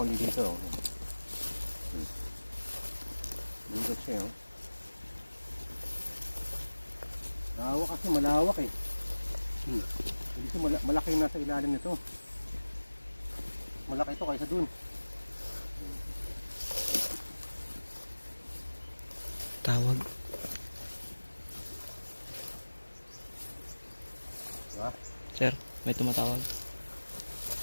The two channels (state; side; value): inverted; both; correlation -1.00